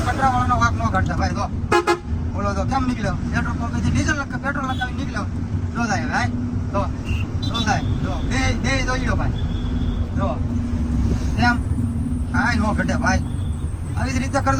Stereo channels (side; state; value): both; identical; correlation 1.00